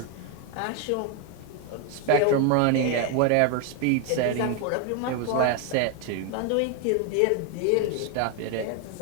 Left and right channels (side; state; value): both; different; correlation 0.01